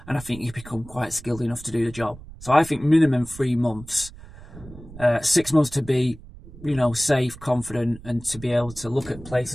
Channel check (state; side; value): noise; right; rumble, 17 dB below the sound